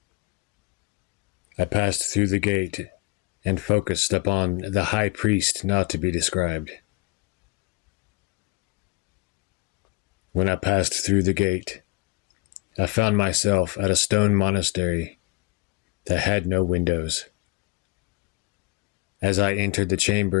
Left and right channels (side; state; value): right; quieter; 24.7 dB